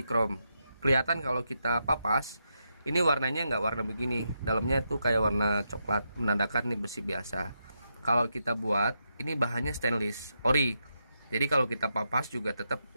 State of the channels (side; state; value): both; inverted; correlation -0.84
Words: chrome. Kelihatan kalau kita papas, ini warnanya nggak warna begini, dalamnya tuh kayak warna coklat, menandakan nih besi biasa. Kalau kita buat, ini bahannya stainless ori, jadi kalau kita papas juga tetap